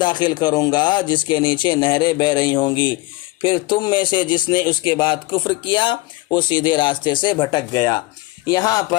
کروں گا جس کے نیچے نہریں بہہ رہی ہوں گی. پھر تم میں سے جس نے اس کے بعد کفر کیا وہ سیدھے راستے سے بھٹک گیا. یہاں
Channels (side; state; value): right; quieter; 20.8 dB